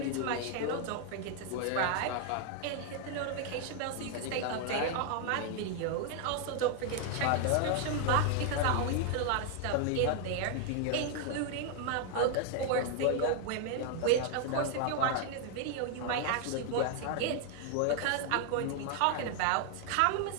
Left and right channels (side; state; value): both; different; correlation 0.00